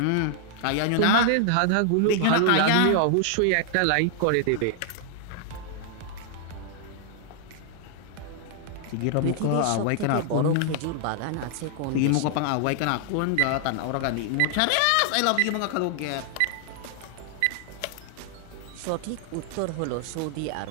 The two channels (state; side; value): different; both; correlation 0.00